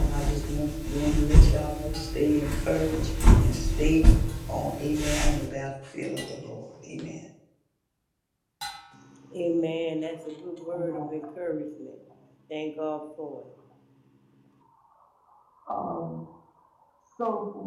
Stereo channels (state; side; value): identical; both; correlation 1.00